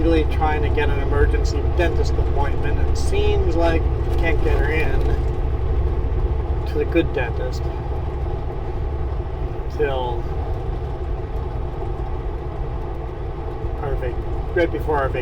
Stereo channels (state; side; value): identical; both; correlation 1.00